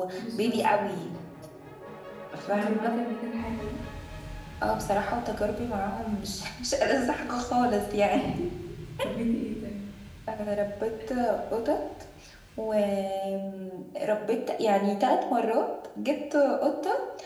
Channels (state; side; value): identical; both; correlation 1.00